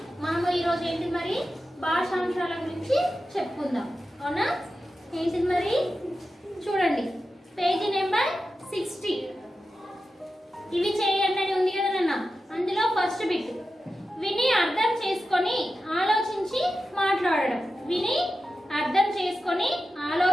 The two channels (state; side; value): normal; both; correlation 0.92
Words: మనము ఈరోజు ఏంటి మరి భాషాంశాల గురించి చెప్పుకుందాం. అవునా? ఏంటిది మరి చూడండి, పేజీ నెంబర్ 60. ఇవి చేయండి అని ఉంది కదా నాన్న. అందులో ఫస్ట్ బిట్ విని అర్థం చేసుకొని ఆలోచించి మాట్లాడడం. విని అర్థం చేసుకొని